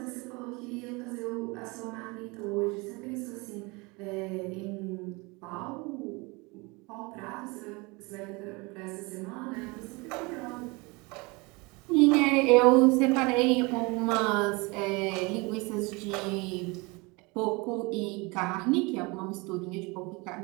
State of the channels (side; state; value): left; quieter; 26.4 dB